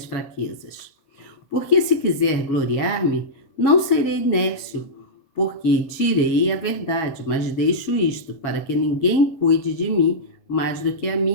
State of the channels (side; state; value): right; late; 7.3 ms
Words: fraquezas. Porque se quiser gloriar-me, não serei nércio, porque direi a verdade, mas deixo isto, para que ninguém cuide de mim mais do que a